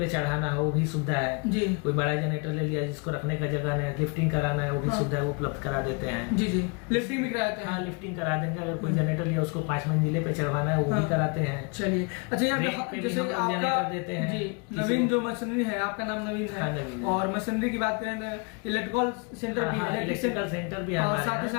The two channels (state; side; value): quieter; right; 33.4 dB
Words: चढ़ाना हो वो भी सुविधा है जी। कोई बड़ा जनरेटर ले लिया जिसको रखने का जगह नहीं है, लिफ्टिंग कराना है वो भी सुविधा है, उपलब्ध करा देते हैं। जी जी, लिफ्टिंग भी कराते हैं। हाँ, लिफ्टिंग करा देंगे। अगर कोई जनरेटर लिया उसको 5 मंजिले पे चढ़वाना है वो भी कराते हैं। चलिए, अच्छा यहाँ रेंट पे पे भी जैसे हम लोग आपका जनरेटर देते हैं। जी, किसी नवीन को- जो मशीनरी है, आपका नाम नवीन हाँ, है, नवीन है। और मशीनरी की बात करें तो इलेक्ट्रिकल सेंटर भी है, इलेक्ट्रिकल सेंटर भी है और हमारे साथ ही